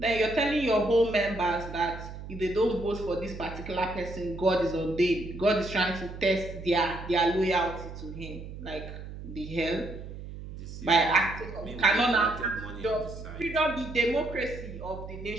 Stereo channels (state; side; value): noise; right; hum, 11 dB below the sound